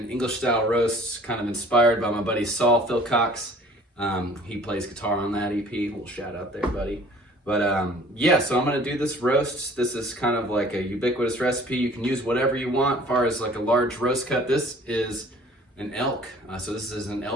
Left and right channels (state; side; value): normal; both; correlation 0.51